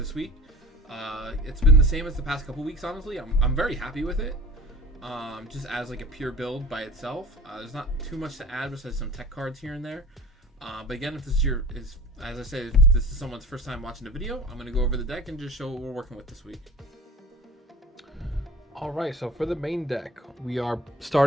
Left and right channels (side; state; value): both; normal; correlation 0.40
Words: week. It's been the same as the past couple weeks, honestly. I'm very happy with it. Just as like a pure build by itself. There's not too much to add besides some tech cards here and there. But again, if this is as I said, if this is someone's first time watching the video, I'm going to go over the deck and just show what we're working with this week. Alright, so for the main deck, we are